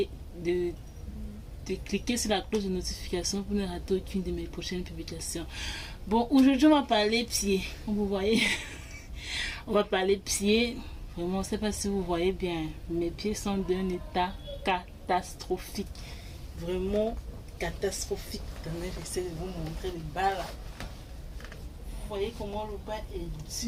de cliquer sur la cloche de notification pour ne rater aucune de mes prochaines publications. Bon, aujourd'hui on va parler pieds, comme vous voyez, on va parler pieds. Vraiment, je ne sais pas si vous voyez bien, mes pieds sont d'un état catastrophique, vraiment catastrophique. Attendez, j'essaie de vous montrer le bas là. Vous voyez comment le bas est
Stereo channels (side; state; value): both; identical; correlation 1.00